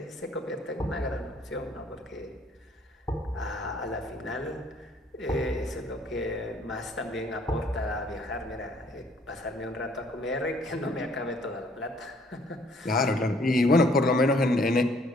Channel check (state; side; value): normal; both; correlation 0.62